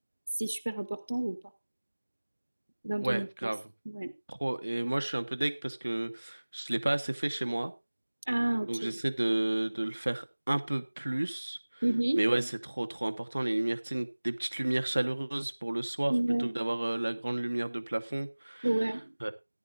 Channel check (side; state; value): both; inverted; correlation -1.00